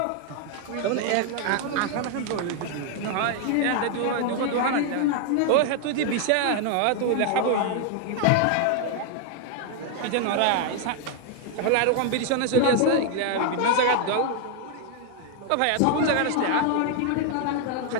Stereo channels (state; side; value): different; both; correlation 0.00